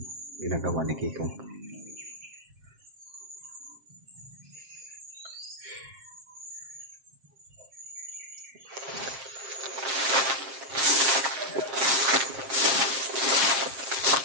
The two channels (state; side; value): late; left; 7.5 ms